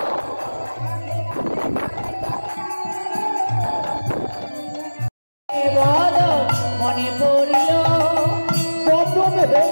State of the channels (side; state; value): both; inverted; correlation -1.00